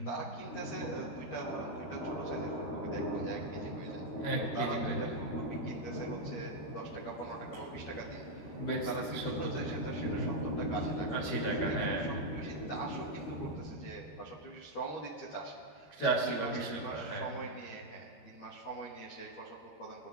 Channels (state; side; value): late; right; 13 ms